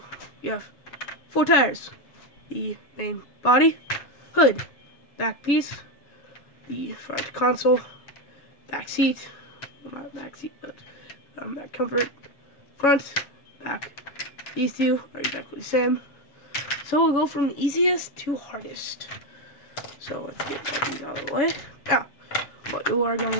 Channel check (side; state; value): right; late; 7.1 ms